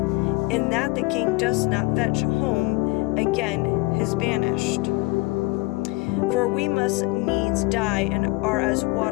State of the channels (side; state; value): right; quieter; 24.0 dB